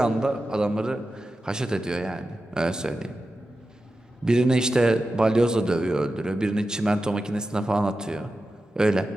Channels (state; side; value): normal; both; correlation 0.92